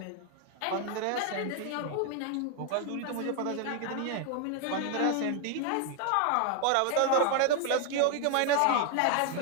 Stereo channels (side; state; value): both; different; correlation 0.00